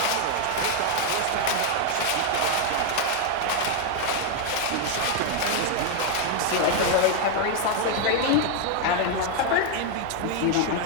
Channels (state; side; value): different; both; correlation 0.00